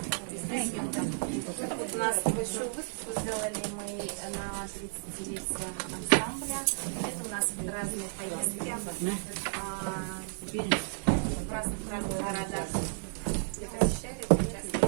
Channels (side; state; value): left; silent; 56 dB below the other